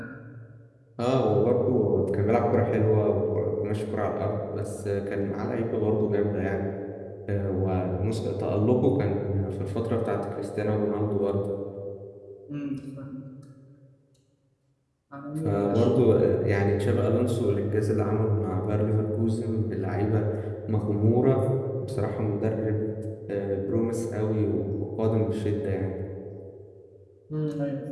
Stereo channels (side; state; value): both; identical; correlation 1.00